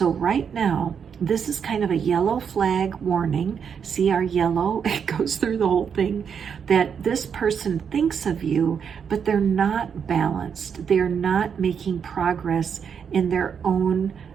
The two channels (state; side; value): quieter; left; 7.1 dB